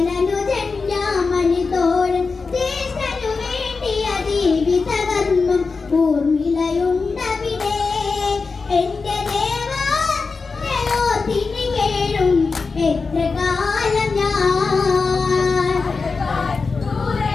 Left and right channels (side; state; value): right; quieter; 4.5 dB